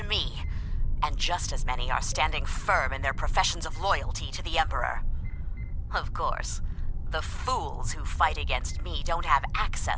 me, and just as many are standing firm in their professions of loyalty to the Emperor. Of course, the fools who fight against me don't have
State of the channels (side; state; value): both; identical; correlation 1.00